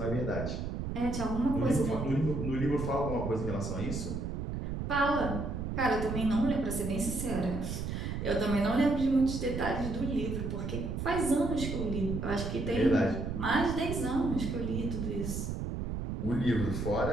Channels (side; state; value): right; noise; rumble, 4 dB below the sound